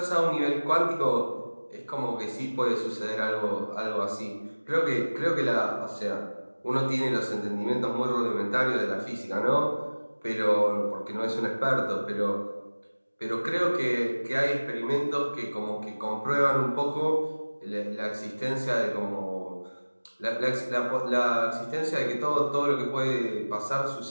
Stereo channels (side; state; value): both; inverted; correlation -1.00